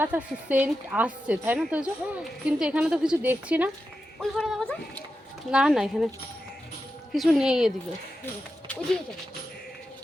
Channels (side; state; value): both; normal; correlation 0.89